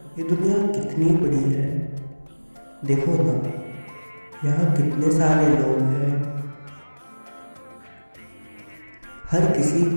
ये दुनिया कितनी बड़ी है, देखो ना यहाँ कितने सारे लोग हैं। हर किसी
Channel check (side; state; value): both; inverted; correlation -1.00